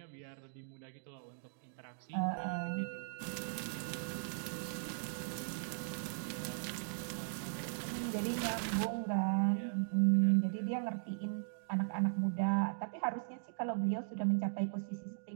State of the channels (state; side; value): silent; left; digital silence